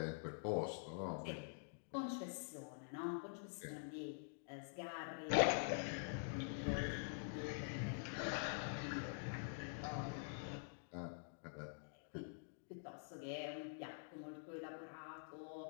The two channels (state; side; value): silent; right; digital silence